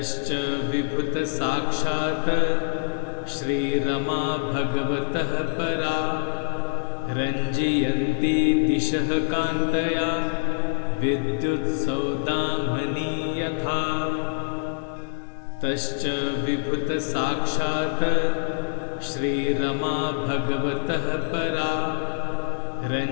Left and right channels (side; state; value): right; silent; 62 dB below the other